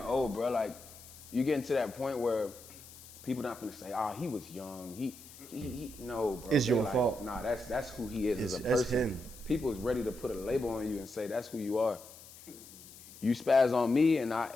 bro. Like, you getting to that point where people not gonna say, he was young. He no, bro. It's your like, fault. Nah, that's who he is as a That's person. him. People is ready to put a label on you and say that's who you are. You spaz on me,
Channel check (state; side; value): noise; left; hiss, 18 dB below the sound